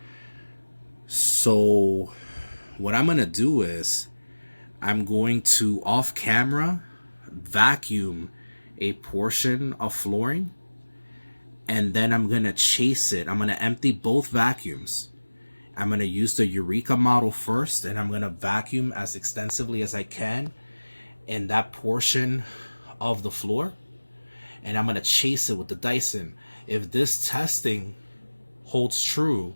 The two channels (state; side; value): inverted; both; correlation -1.00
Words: So what I'm going to do is I'm going to off camera vacuum a portion of flooring, and then I'm going to chase it. I'm going to empty both vacuums. I'm going to use the Eureka model first, and I'm going to vacuum as extensively as I can in that portion of the floor, and I'm going to chase it with the Dyson. If this testing holds true